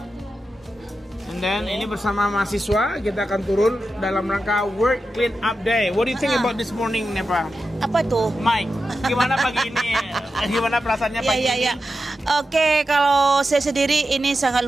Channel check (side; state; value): both; normal; correlation 0.90